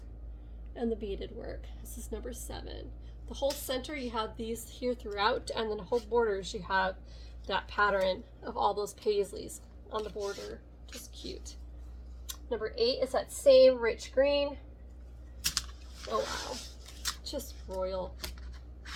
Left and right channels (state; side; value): identical; both; correlation 1.00